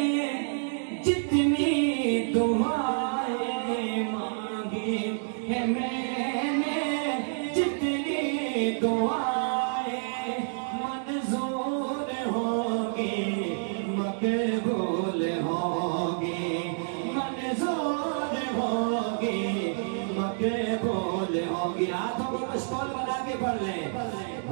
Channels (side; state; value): left; silent; digital silence